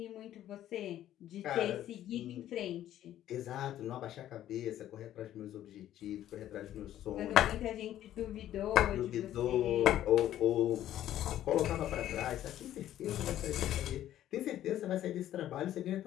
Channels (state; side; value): quieter; right; 12.3 dB